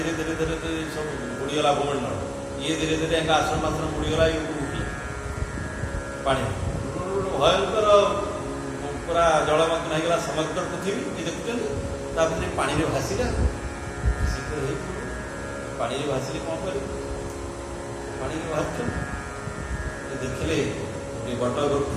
ଧୀରେ ଧୀରେ ଧୀରେ ସବୁ ବୁଡ଼ିଗଲା ଭୂମଣ୍ଡଳ, ଇଏ ଧୀରେ ଧୀରେ ଏକା ଆଶ୍ରମ ମାତ୍ର ବୁଡ଼ିଗଲା, ଇଏ ଉଠିଲା ପାଣି, ଭୟଙ୍କର ପୁରା ଜଳମଗ୍ନ ହେଇଗଲା ସମଗ୍ର ପୃଥିବୀ। ଇଏ ଦେଖୁଛନ୍ତି, ତାପରେ ପାଣିରେ ଭାସିଲା, ଶୀଘ୍ର ହେଇପଡ଼ିବ। ପାଣିରେ ଭାସିଲେ କ'ଣ କରିବେ? ପାଣିରେ ଭାସୁଛନ୍ତି, ଦେଖିଲେ ବଟ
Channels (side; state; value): both; identical; correlation 1.00